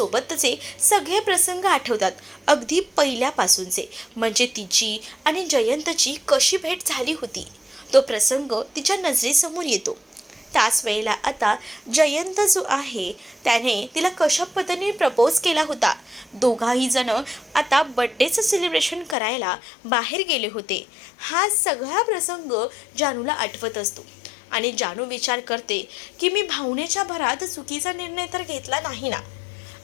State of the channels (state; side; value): drops out; right; at 19.2 s